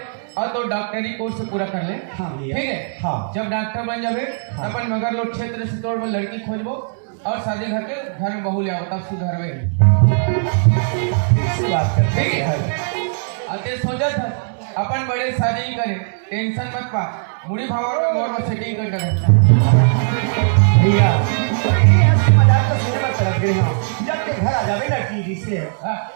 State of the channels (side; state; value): left; silent; 67 dB below the other